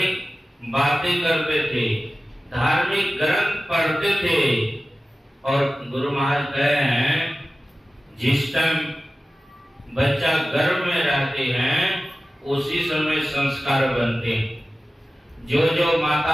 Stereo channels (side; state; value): both; normal; correlation 0.95